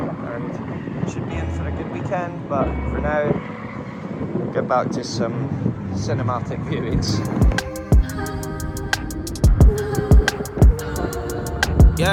should be in for a good weekend, but for now, get back to some cinematic viewings.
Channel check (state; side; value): identical; both; correlation 1.00